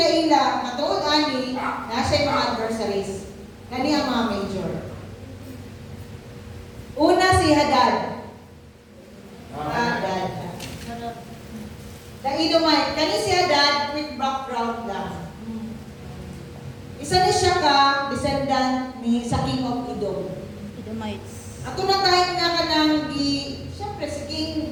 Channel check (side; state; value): both; identical; correlation 1.00